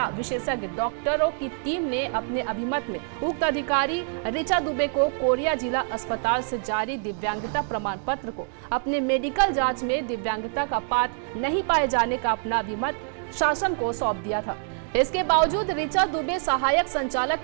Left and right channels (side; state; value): left; silent; 61 dB below the other